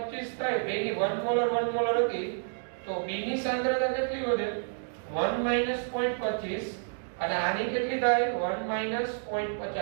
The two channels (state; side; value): silent; left; digital silence